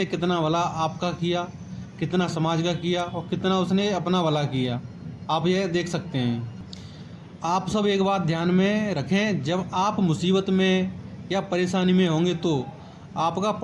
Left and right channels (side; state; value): both; identical; correlation 1.00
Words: कितना भला आपका किया, कितना समाज का किया और कितना उसने अपना भला किया, आप यह देख सकते हैं। आप सब एक बात ध्यान में रखें, जब आप मुसीबत में या परेशानी में होंगे तो आपका